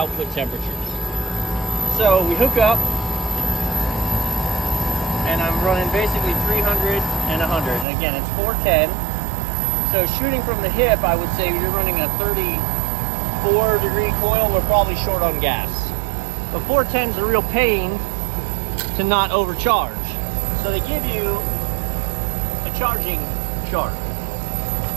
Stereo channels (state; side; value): drops out; left; at 7.9 s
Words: temperatures. So we hook up, and I'm running basically 300 and 100. And again, it's 410. So shooting from the hip, I would say you're running a 34 degree coil. We're probably short on gas. But 410 is a real pain to not overcharge. So they give you a charging chart.